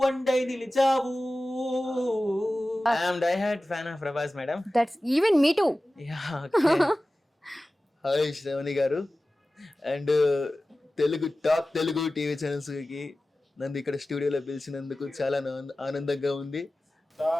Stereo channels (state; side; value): normal; both; correlation 0.96